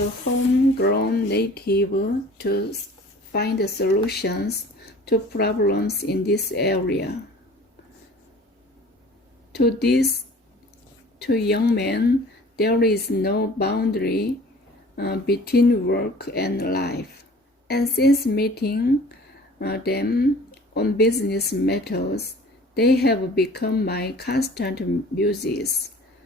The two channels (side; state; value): both; normal; correlation 0.47